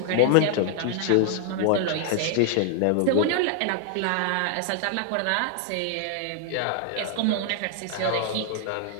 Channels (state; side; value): different; both; correlation -0.01